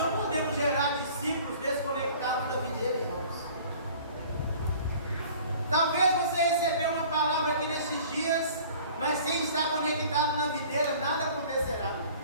podemos gerar discípulos desconectados da videira, irmãos. Talvez você recebeu uma palavra aqui nesses dias, mas sem estar conectado na videira, nada acontecerá.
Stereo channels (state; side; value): inverted; both; correlation -0.48